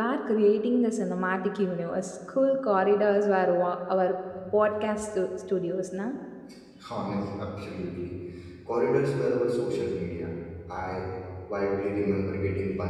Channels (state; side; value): identical; both; correlation 1.00